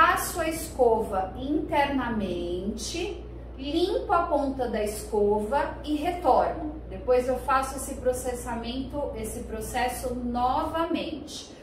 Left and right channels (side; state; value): both; identical; correlation 1.00